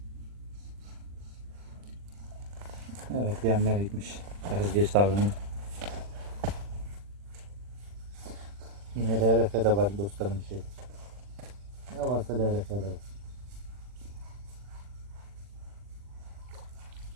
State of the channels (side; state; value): left; late; 40 ms